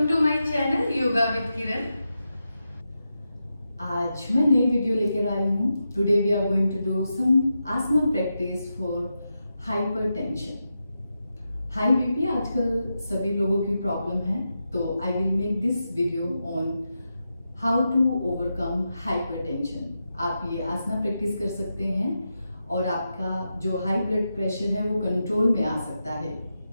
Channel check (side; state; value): both; inverted; correlation -0.88